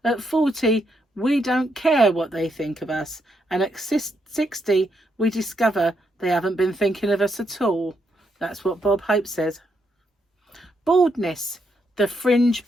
At 40, we don't care what they think of us. And at 60, we discover they haven't been thinking of us at all. That's what Bob Hope says. Baldness, the fringe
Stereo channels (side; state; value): both; normal; correlation 0.78